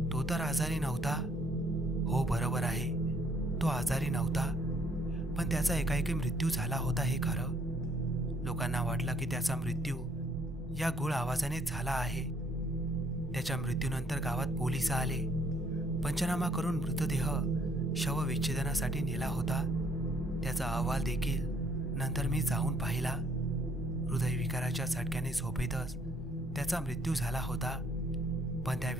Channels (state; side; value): normal; both; correlation 0.64